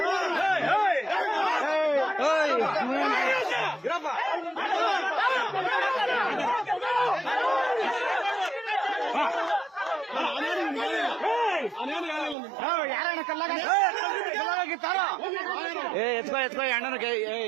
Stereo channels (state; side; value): drops out; left; at 12.4 s